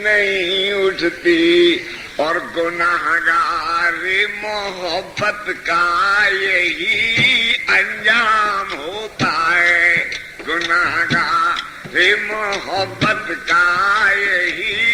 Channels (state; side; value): identical; both; correlation 1.00